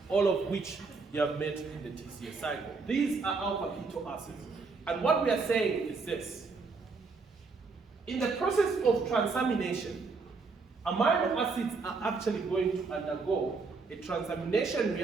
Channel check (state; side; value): quieter; left; 4.4 dB